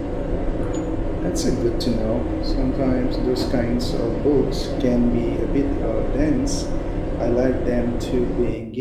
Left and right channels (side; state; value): both; identical; correlation 1.00